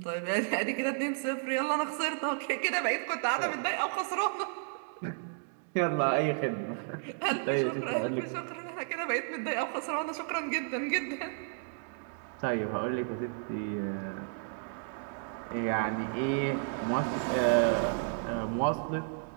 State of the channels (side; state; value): left; silent; 56 dB below the other